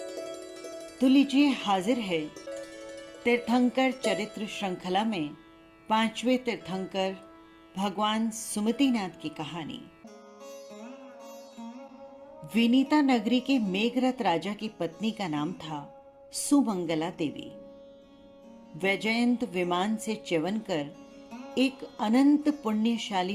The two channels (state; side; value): identical; both; correlation 1.00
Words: तो लीजिए, हाजिर है तीर्थंकर चरित्र श्रृंखला में 5वें तीर्थंकर भगवान सुमतिनाथ की कहानी। विनीता नगरी के मेघरथ राजा की पत्नी का नाम था सुमंगला देवी। वैजयंत विमान से च्यवन कर एक अनंत